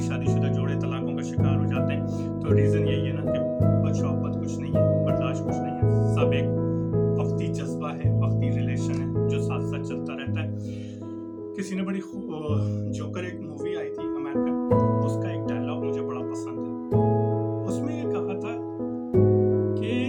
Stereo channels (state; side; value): identical; both; correlation 1.00